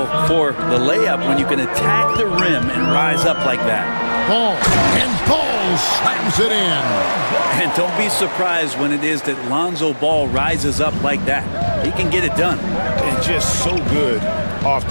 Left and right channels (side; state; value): both; inverted; correlation -1.00